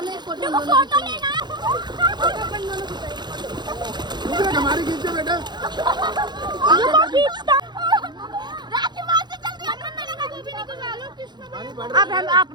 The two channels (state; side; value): late; left; 0.21 ms